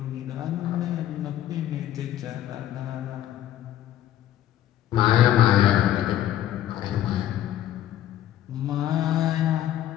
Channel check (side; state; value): right; quieter; 12.3 dB